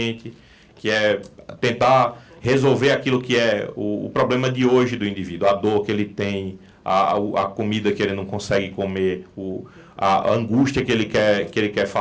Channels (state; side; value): identical; both; correlation 1.00